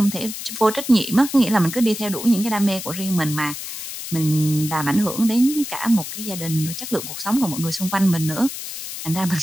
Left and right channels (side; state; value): left; noise; hiss, 8 dB below the sound